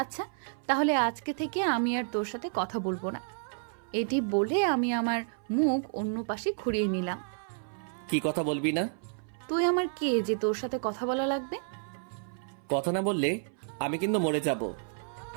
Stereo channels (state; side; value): silent; left; 57 dB below the other